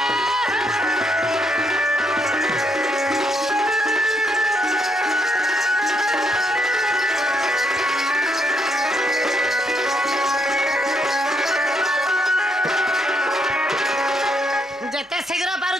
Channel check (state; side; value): normal; both; correlation 0.74